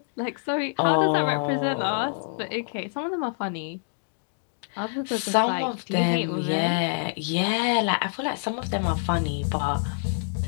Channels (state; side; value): silent; right; digital silence